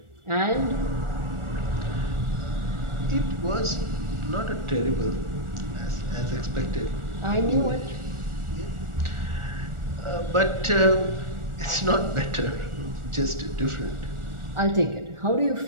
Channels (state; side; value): late; left; 1.4 ms